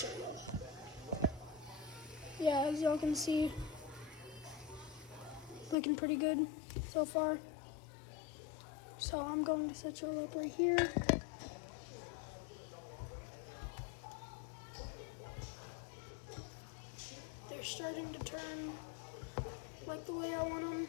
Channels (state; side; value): drops out; right; at 5.8 s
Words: you. Yeah, as y'all can see, looking pretty good so far. So I'm going to set y'all up right here. They're starting to turn like the way I want them